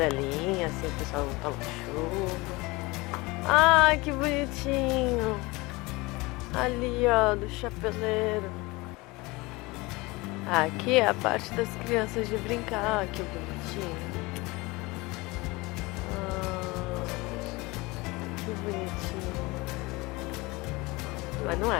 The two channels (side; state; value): right; quieter; 23.3 dB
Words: assim, o pessoal não toma chuva. Ai, que bonitinho! Ali, ó, do chapeleiro. Aqui é a parte das crianças de brincar, que bonitinho. Que bonitinho. Mas não